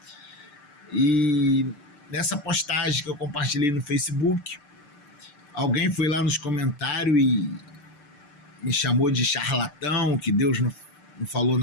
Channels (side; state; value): right; late; 6.7 ms